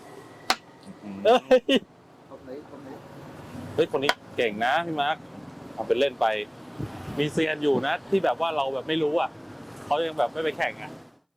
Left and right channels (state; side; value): identical; both; correlation 1.00